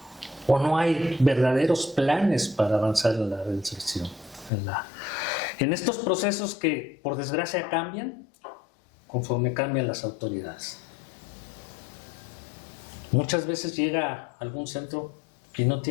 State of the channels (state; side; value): drops out; right; at 4.5 s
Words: o no hay verdaderos planes para avanzar en la reinserción. En estos procesos que por desgracia cambian conforme cambian las autoridades. Muchas veces llega a algún centro que no